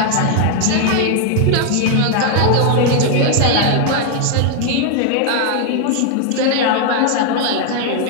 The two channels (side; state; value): both; different; correlation 0.00